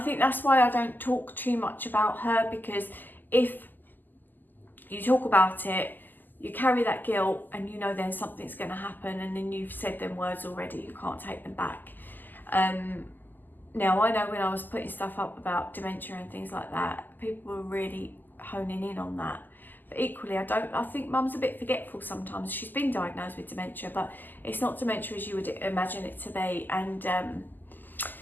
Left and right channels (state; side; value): late; right; 0.087 ms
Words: think that's why I don't talk too much about her, because if you talk about it, you carry that guilt, and you know then something's going to happen, and then you've said them words already, you can't take them back. Now, I know when I was putting stuff up about dementia and things like that, people were really honing in on that. But equally, I think Mum's a bit forgetful sometimes. She's been diagnosed with dementia, but it's not dementia as you would imagine it to be. And